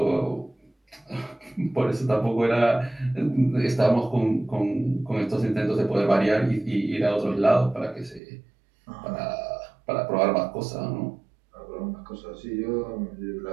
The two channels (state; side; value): drops out; left; at 8.2 s